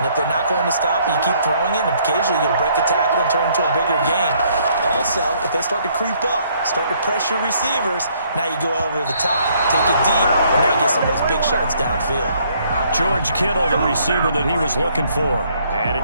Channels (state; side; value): inverted; both; correlation -0.66